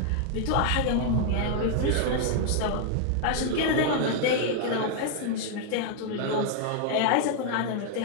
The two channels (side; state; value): both; different; correlation 0.00